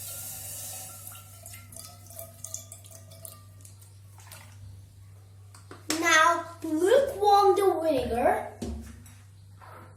now lukewarm the vinegar.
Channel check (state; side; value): identical; both; correlation 1.00